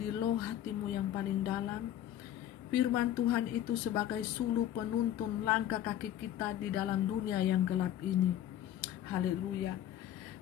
loh hatimu yang paling dalam. Firman Tuhan itu sebagai suluh penuntun langkah kaki kita di dalam dunia yang gelap ini. Haleluya.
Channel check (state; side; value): quieter; right; 11.7 dB